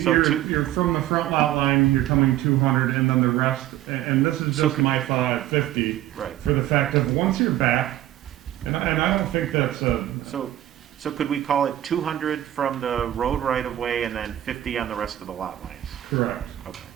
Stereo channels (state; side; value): quieter; left; 13.4 dB